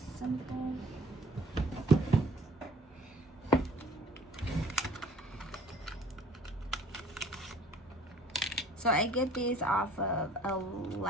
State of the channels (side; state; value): both; normal; correlation 0.53